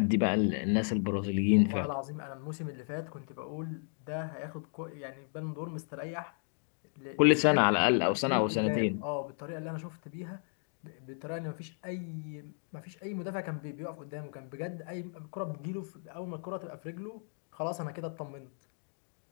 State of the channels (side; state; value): right; silent; 55 dB below the other